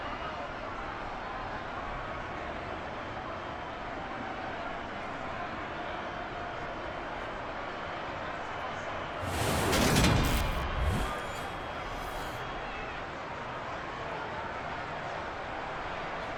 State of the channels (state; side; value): identical; both; correlation 1.00